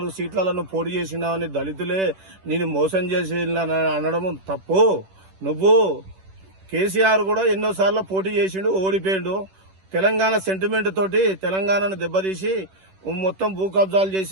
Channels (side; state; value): left; late; 10 ms